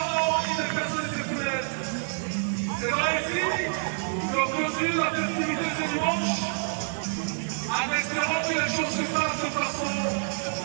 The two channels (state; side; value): silent; left; 60 dB below the other